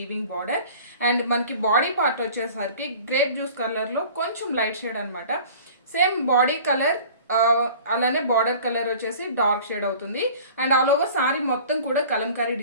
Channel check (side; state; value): both; inverted; correlation -0.44